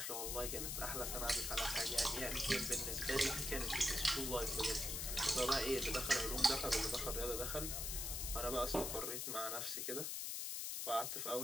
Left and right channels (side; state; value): left; noise; hiss, 2 dB below the sound